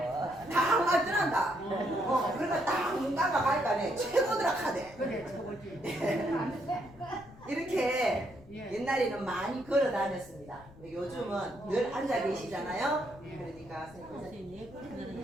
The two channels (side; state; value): left; noise; rumble, 21 dB below the sound